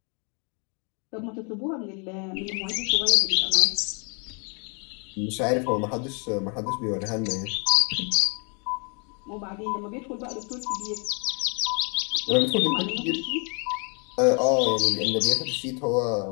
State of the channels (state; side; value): quieter; right; 35.8 dB